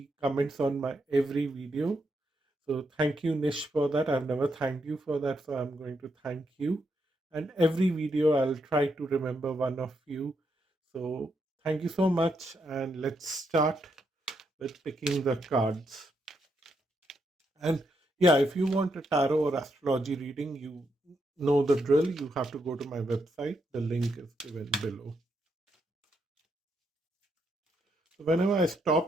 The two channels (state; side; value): normal; both; correlation 0.80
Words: comments on my every video. So thank you, Nish, for that. I've never thanked you for that, so I'm going to thank you. And every video, I'll try to remember one of you. So thank you so much, and let's start with picking the cards. And yeah, if you want a tarot or astrology reading, you know the drill. You have to go to my website. The link is given below. So whenever I